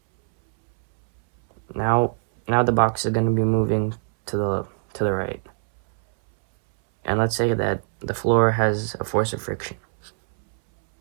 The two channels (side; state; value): left; silent; 64 dB below the other